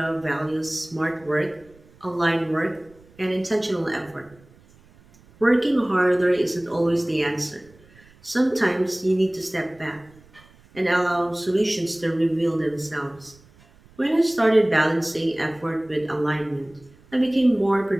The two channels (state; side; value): noise; right; rumble, 27 dB below the sound